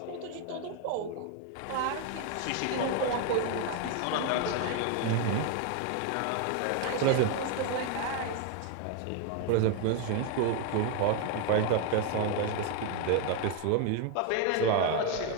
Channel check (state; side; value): different; both; correlation 0.01